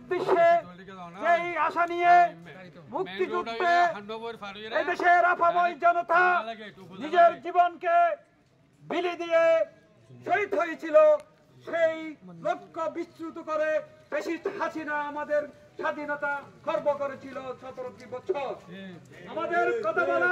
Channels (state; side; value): identical; both; correlation 1.00